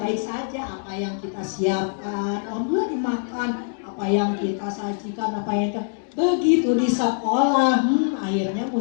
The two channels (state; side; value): silent; right; 63 dB below the other